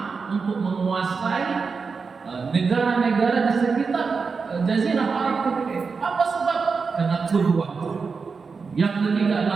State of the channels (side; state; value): left; quieter; 5.0 dB